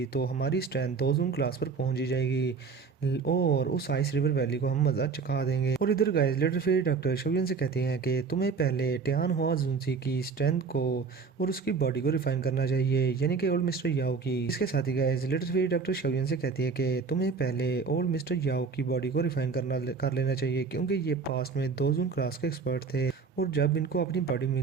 तो हमारी स्ट्रेंथ दो जून क्लास पर पहुंच ही जाएगी और उस आइस रिवर वैली को हम मजा चखा देंगे। और इधर guys little fairy doctor Shaoyan से कहते हैं कि तुम्हें पहले टियान हुआ जुंजी की स्ट्रेंथ को और उसकी बॉडी को रिफाइन करना चाहिए, यानी कि ओल्ड मिस्टर याओ की। इसके साथ ही guys little fairy doctor Shaoyan से कहती है कि तुम्हें पहले ओल्ड मिस्टर याओ की बॉडी को रिफाइन कर लेना चाहिए, क्योंकि ये पास्ट में दो जून क्लास के एक्सपर्ट थे और जब इनको अपनी बॉडी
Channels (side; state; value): left; quieter; 5.1 dB